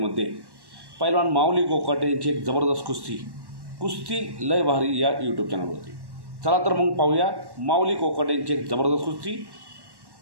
पैलवान माऊली कोकाटे यांची एक जबरदस्त कुस्ती लय भारी या यूट्यूब चॅनलवरती। चला तर मग पाहूया माऊली कोकाटे यांची एक जबरदस्त कुस्ती।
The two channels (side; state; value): left; late; 1.1 ms